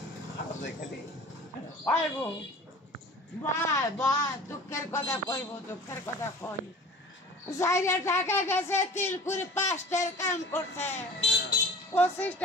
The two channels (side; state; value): both; normal; correlation 0.43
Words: দুঃখের কথা কইব দুঃখের কথা কই যাইরা ঢাকা গেছে তিলকুড়ি 5টার কাম করছে 25